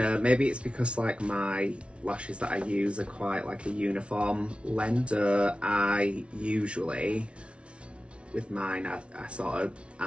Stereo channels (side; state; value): left; late; 0.060 ms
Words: maybe it's because like my lashes that I use are quite like a uniform length, so I usually, with mine, I sort of